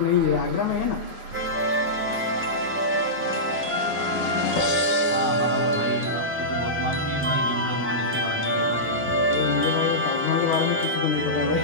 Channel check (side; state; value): both; normal; correlation -0.15